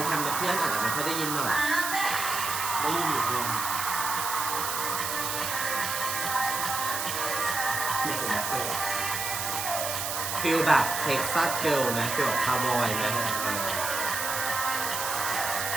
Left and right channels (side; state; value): right; noise; hiss, 3 dB below the sound